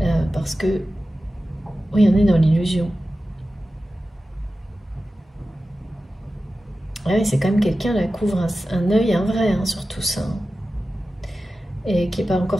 Parce que oui, on est dans l'illusion. Ouais, c'est quand même quelqu'un qui couvre un œil, un vrai, hein, sur tout ça. Et qui n'est pas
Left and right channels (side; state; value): both; normal; correlation 0.94